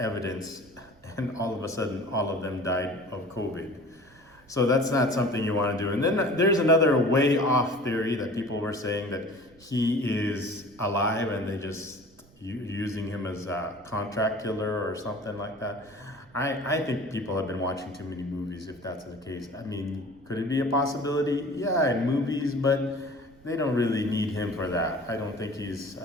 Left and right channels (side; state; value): right; noise; rumble, 27 dB below the sound